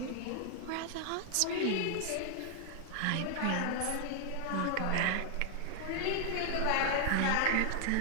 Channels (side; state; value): both; different; correlation 0.00